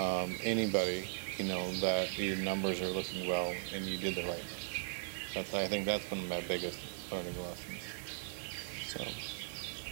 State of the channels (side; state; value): left; silent; digital silence